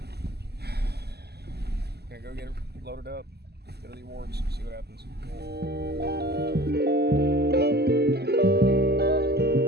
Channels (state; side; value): late; left; 0.47 ms